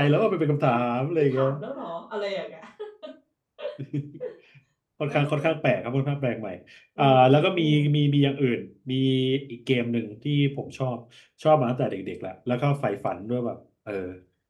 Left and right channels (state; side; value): identical; both; correlation 1.00